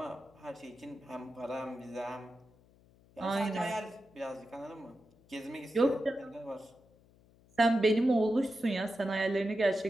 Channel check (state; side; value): noise; left; hum, 29 dB below the sound